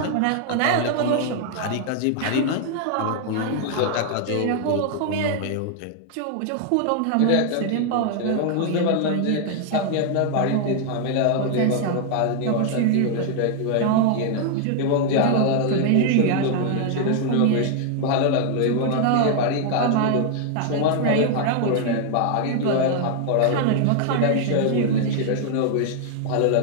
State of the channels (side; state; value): both; different; correlation 0.00